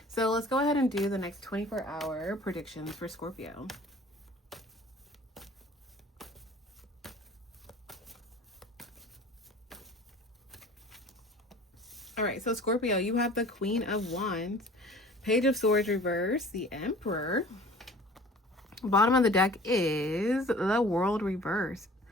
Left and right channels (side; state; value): both; normal; correlation 0.46